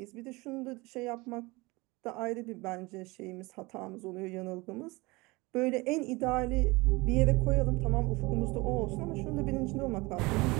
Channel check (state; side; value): quieter; left; 23.6 dB